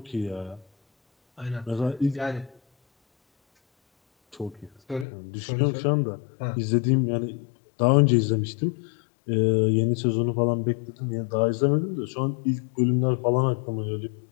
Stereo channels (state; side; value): drops out; right; at 5.1 s